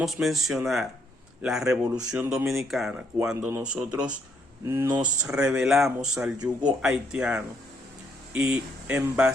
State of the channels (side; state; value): both; normal; correlation 0.72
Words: mencionar la Revolución Dominicana, cuando nosotros nos rebelamos al yugo haitiano y en